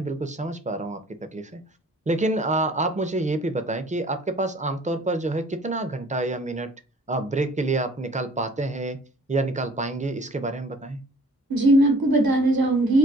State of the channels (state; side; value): normal; both; correlation 0.53